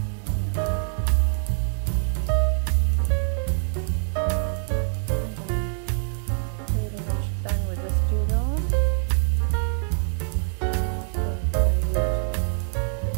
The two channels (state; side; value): silent; left; 62 dB below the other